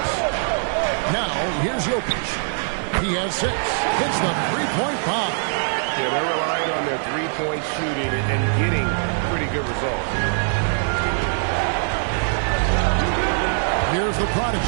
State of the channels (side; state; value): left; silent; 63 dB below the other